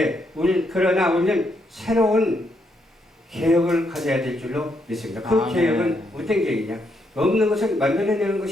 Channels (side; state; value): both; normal; correlation 0.77